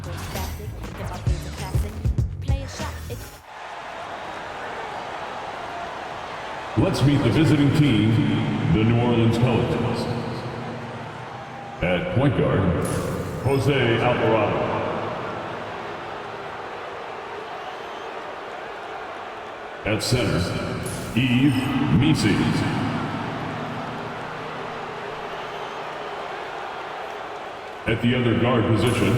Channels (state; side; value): identical; both; correlation 1.00